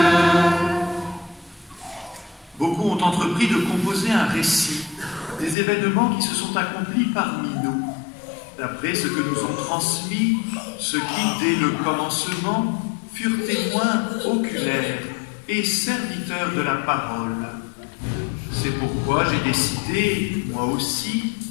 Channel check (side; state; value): right; drops out; at 5.6 s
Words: Beaucoup ont entrepris de composer un récit des événements qui se sont accomplis parmi nous, d'après ce que nous ont transmis ceux qui, dès le commencement, furent témoins oculaires et serviteurs de la parole. C'est pourquoi j'ai décidé, moi aussi,